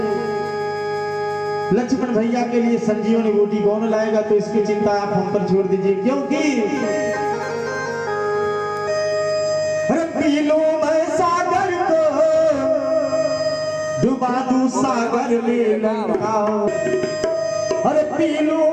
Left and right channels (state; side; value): identical; both; correlation 1.00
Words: लक्ष्मण भैया के लिए संजीवनी बूटी कौन लाएगा, तो इसकी चिंता आप हम पर छोड़ दीजिए, क्योंकि पी लूं मैं सागर को डुबा दूं सागर में लंकाओ, अरे पी लूं